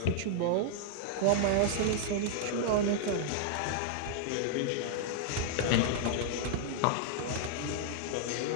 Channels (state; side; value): different; both; correlation -0.01